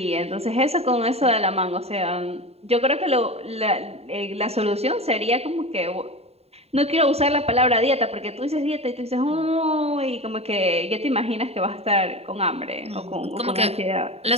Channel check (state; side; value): late; left; 0.30 ms